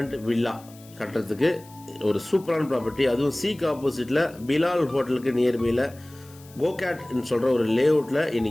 வில்லா கட்டுறதுக்கு ஒரு சூப்பரான ப்ராப்பர்ட்டி. அதுவும் சீக்கு ஆப்போசிட்டில் பிலால் ஹோட்டலுக்கு நியர்பையில் கோகேட்னு சொல்கிற ஒரு லேஅவுட்டில்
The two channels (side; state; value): left; noise; hiss, 24 dB below the sound